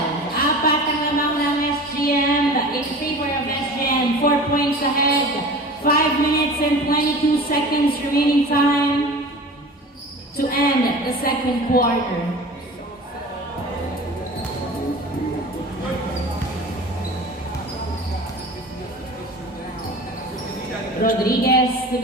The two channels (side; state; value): both; normal; correlation 0.38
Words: ang lamang ng SGM. In favor of SGM. 4 points ahead. 5 minutes and 22 seconds remaining time to end the second quarter. Rodriguez to